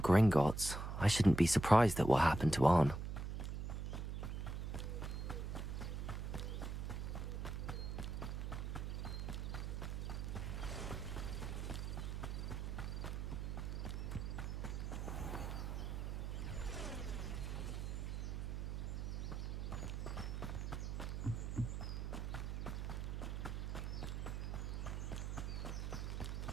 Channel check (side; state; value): right; noise; hum, 3 dB below the sound